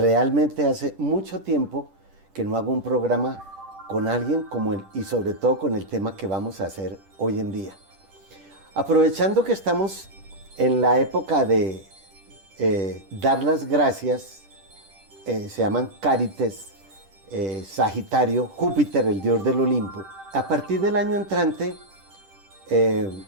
hace mucho tiempo que no hago un programa con alguien como él y sobre todo con el tema que vamos a hacer hoy en día. Aprovechando que estamos en la época de dar las gracias, se llaman Cárites, Sagitario, Júpiter, el dios del Olimpo. A partir del año entrante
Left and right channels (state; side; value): late; left; 10 ms